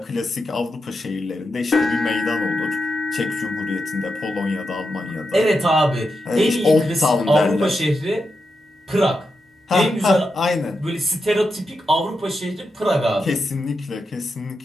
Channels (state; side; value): normal; both; correlation 0.87